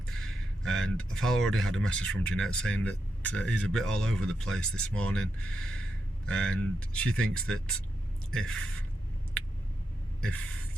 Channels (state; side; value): normal; both; correlation 0.85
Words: And I've already had a message from Jeanette saying that he's a bit all over the place this morning, and she thinks that if